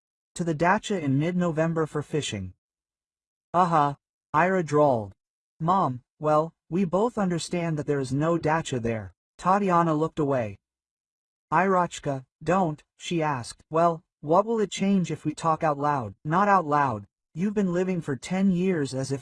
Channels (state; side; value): identical; both; correlation 1.00